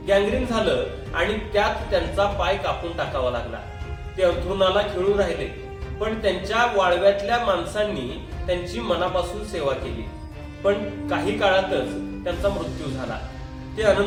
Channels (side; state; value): both; identical; correlation 1.00